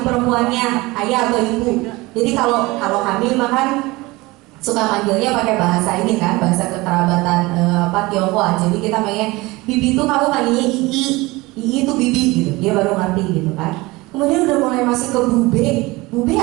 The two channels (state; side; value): quieter; left; 21.9 dB